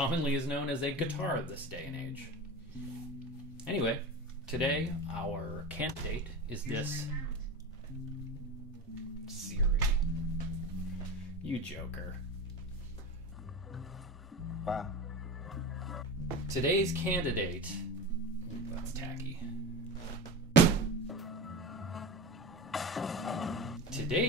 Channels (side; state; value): both; normal; correlation 0.26